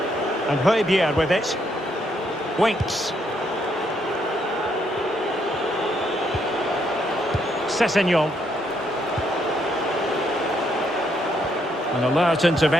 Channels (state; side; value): normal; both; correlation 0.74